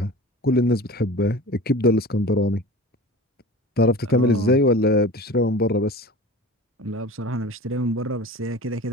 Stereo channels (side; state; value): both; normal; correlation 0.37